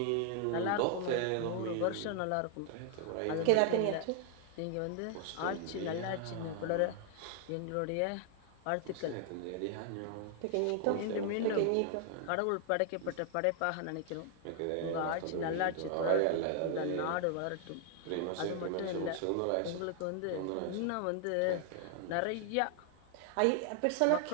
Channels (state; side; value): different; both; correlation 0.00